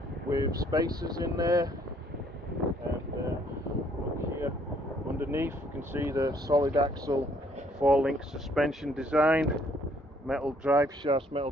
with spacers in there, and look here underneath you can see the solid axle 4-link suspension design, metal drive shafts, metal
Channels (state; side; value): normal; both; correlation 0.65